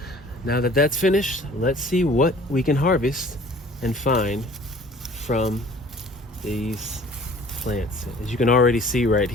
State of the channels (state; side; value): normal; both; correlation 0.50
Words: Now that that's finished, let's see what we can harvest and find from these plants. As you can already see right